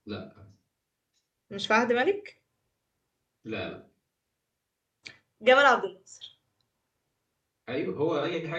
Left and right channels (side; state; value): both; identical; correlation 1.00